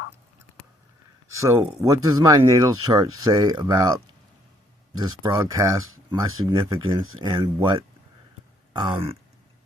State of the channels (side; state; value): both; normal; correlation 0.67